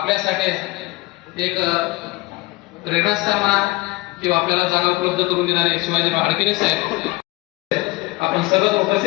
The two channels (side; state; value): right; quieter; 21.6 dB